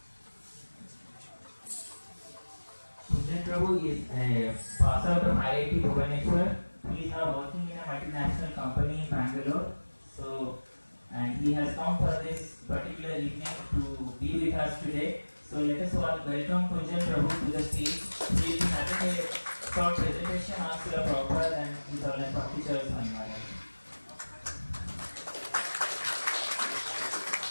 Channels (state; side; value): inverted; both; correlation -1.00